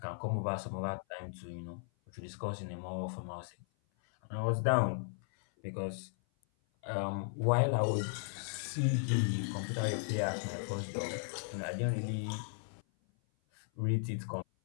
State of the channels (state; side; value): silent; right; 54 dB below the other